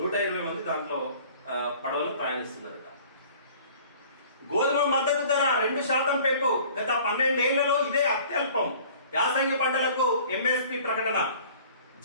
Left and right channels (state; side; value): inverted; both; correlation -0.49